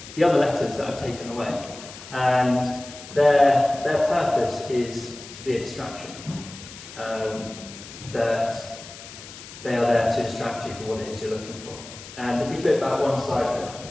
other letters that I've taken away. And their purpose is to be a distraction. That they are there to distract you from what it is you're looking for. And if you flip back one slide,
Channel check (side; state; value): left; noise; hiss, 15 dB below the sound